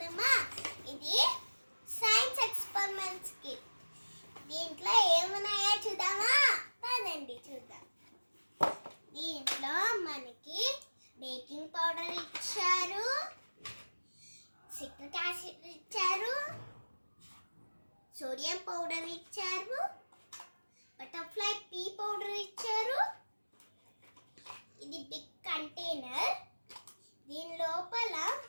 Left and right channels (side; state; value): both; inverted; correlation -1.00